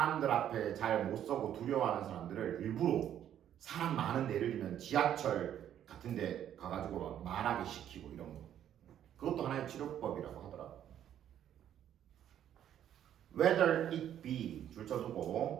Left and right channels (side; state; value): left; quieter; 10.5 dB